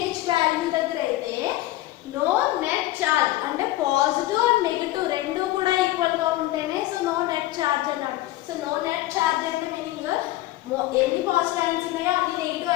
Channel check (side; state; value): right; quieter; 16.5 dB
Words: value దగ్గర అయితే no net charge అంటే positive and negative రెండు కూడా equal గా ఉంటేనే so no net charge అన్నాడు. So no net charge అంటే మీనింగ్ ఎన్ని పాజిటివ్ అయాన్స్ ఉన్నాయో అన్ని నెగిటివ్